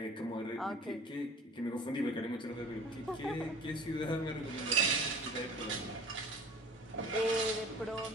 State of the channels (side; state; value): both; normal; correlation 0.45